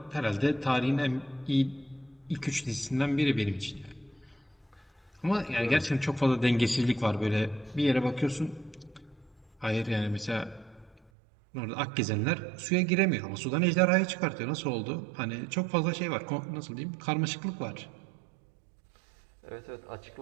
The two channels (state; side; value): drops out; left; at 11.1 s